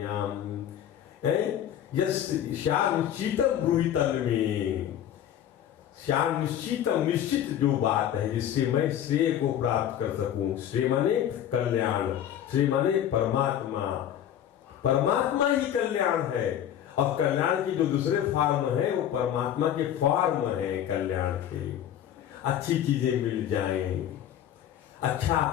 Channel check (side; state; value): right; quieter; 10.5 dB